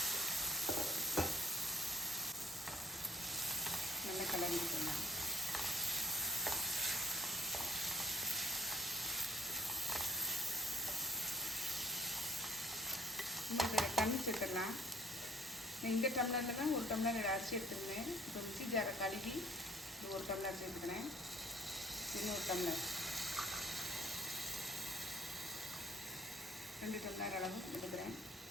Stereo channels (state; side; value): normal; both; correlation 0.58